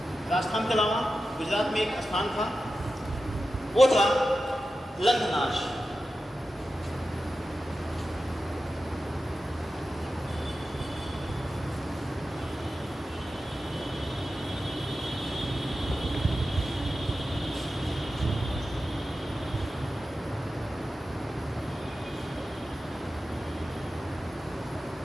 राजस्थान के अलावा गुजरात में एक स्थान था, वो था लंघनाश।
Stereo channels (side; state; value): both; normal; correlation 0.92